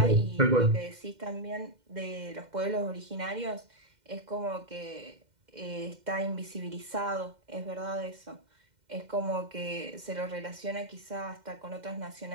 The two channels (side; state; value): left; late; 2.1 ms